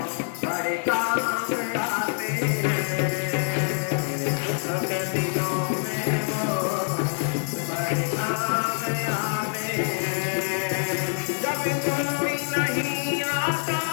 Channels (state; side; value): silent; right; 56 dB below the other